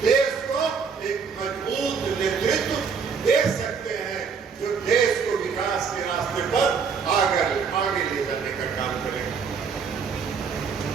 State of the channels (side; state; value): left; quieter; 5.9 dB